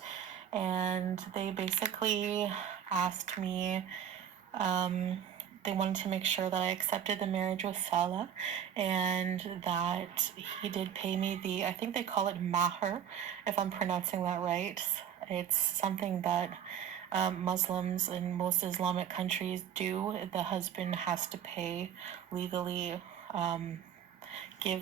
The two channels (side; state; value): left; quieter; 9.1 dB